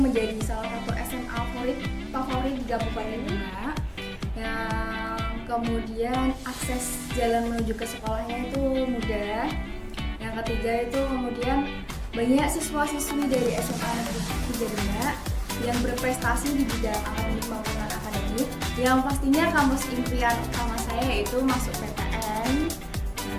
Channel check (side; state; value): both; identical; correlation 1.00